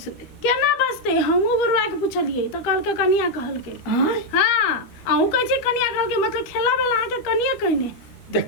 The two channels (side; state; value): right; late; 12 ms